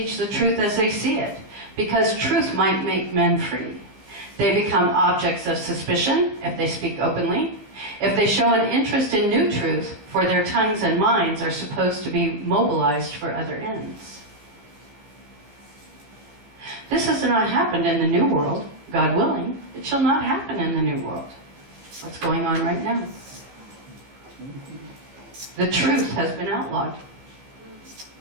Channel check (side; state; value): left; late; 15 ms